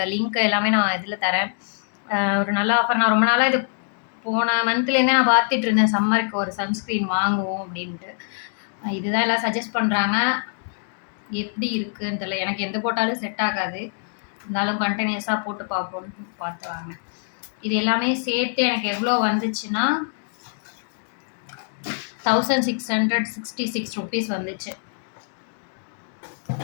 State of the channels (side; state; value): right; silent; digital silence